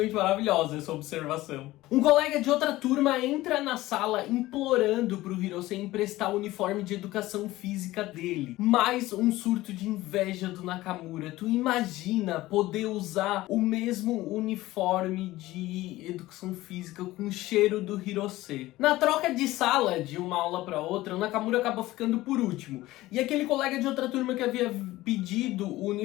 maravilhosa essa observação. Um colega de outra turma entra na sala implorando pro Hirose emprestar o uniforme de educação física dele. Mais um surto de inveja do Nakamura. Tu imagina poder usar o mesmo uniforme de educação física com o cheiro do Hirose. Na troca de sala de uma aula para outra, o Nakamura acaba ficando por último. E aquele colega de outra turma que havia pedido o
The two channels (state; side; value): quieter; right; 17.4 dB